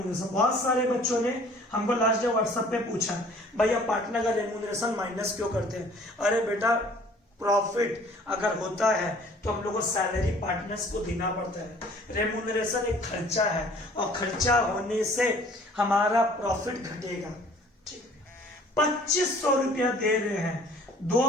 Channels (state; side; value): normal; both; correlation 0.53